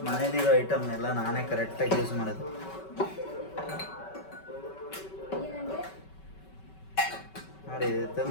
ಮನೇಲಿರೋ ಐಟಮ್ನೆಲ್ಲ ನಾನೇ ಕರೆಕ್ಟಾಗಿ ಯೂಸ್ ಮಾಡೋದು. ನೋಡಿ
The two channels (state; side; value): late; right; 5.3 ms